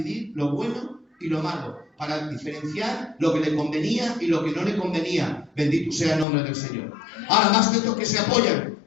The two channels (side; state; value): right; drops out; at 6.2 s